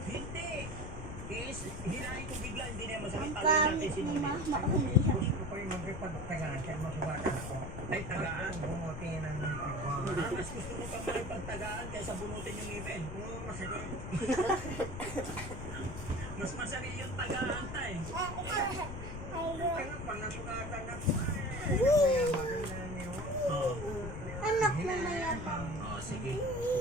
Hindi. Hinahin ko bigla, hindi na masakit. Taloy natin sinunod. Gusto ko yung mag-ipagtagaan kaya masubatan ako. Ay, tagaan. Bumuti ng Mas gusto mo pa makipagtagaan kaysa bunutin yung ngipin. masakit. Mas masakit yung tagaan tayo. Kaya pag nasugatan ako, maganda niyo. Anak na mayan. Oh, sige.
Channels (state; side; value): noise; left; rumble, 8 dB below the sound